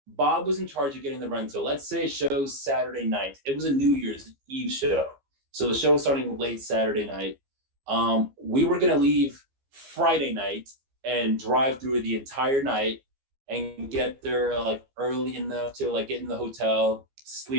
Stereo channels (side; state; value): left; late; 15 ms